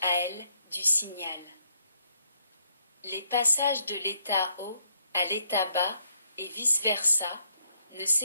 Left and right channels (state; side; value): inverted; both; correlation -0.72